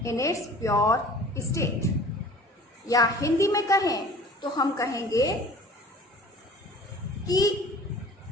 in its pure state. या हिंदी में कहें तो हम कहेंगे कि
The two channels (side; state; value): both; normal; correlation 0.46